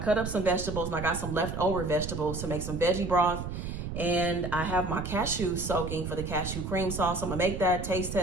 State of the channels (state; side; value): noise; right; rumble, 6 dB below the sound